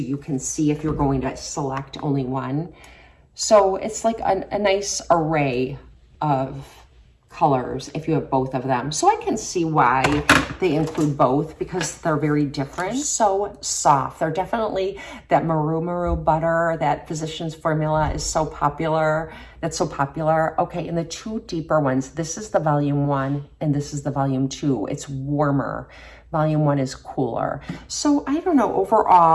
can see if you're going to select only one. So it's like a nice array of colors if you have both of them. So I can see why they include both because they're very different. So soft. They're definitely that Maru butter, that Physicians Formula is so popular. That's so popular. Okay, and the two deeper ones, this is the volume 1 and this is the volume 2. It's warmer. Volume 1 is cooler. So I don't know,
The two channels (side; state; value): both; identical; correlation 1.00